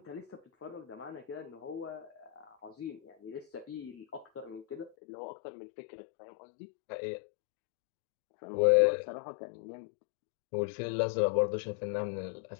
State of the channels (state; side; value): drops out; right; at 4.9 s